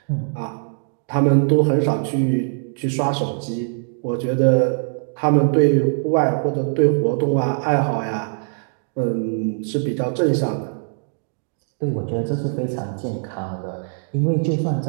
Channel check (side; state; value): left; silent; digital silence